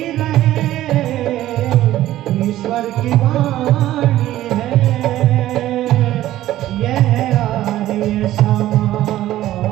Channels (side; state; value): left; quieter; 14.2 dB